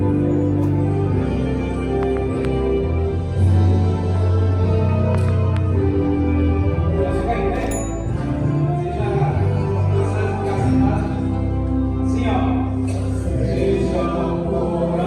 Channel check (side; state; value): both; identical; correlation 1.00